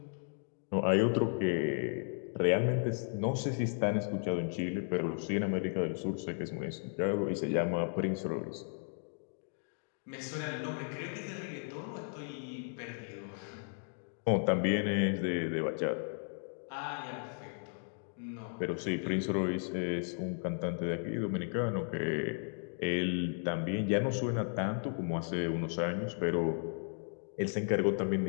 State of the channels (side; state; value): right; silent; 54 dB below the other